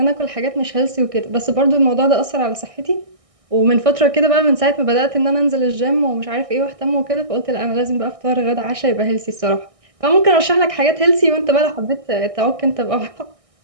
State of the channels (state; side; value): late; left; 1.6 ms